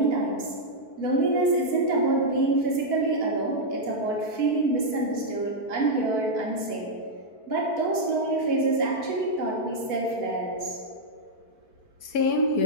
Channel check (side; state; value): right; late; 4.5 ms